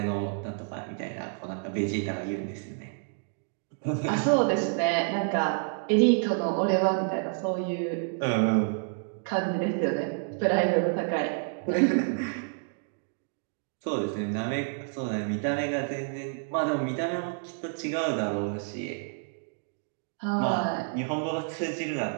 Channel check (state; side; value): silent; left; 58 dB below the other